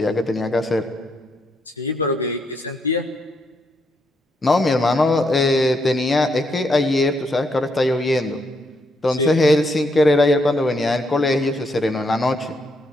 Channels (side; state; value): both; normal; correlation 0.77